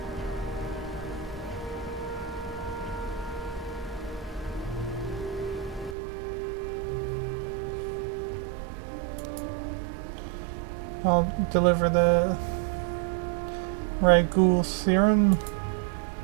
I'll deliver the Ragoul serum.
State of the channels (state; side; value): drops out; left; at 6.0 s